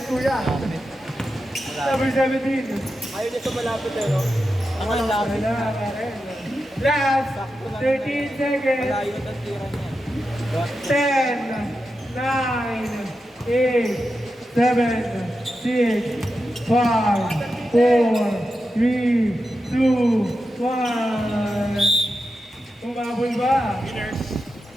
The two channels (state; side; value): normal; both; correlation 0.89